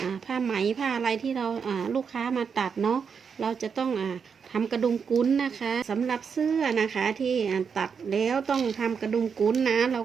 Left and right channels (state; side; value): quieter; left; 6.3 dB